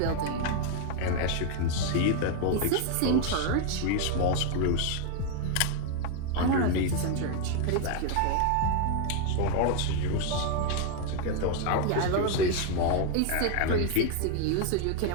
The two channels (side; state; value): both; different; correlation 0.01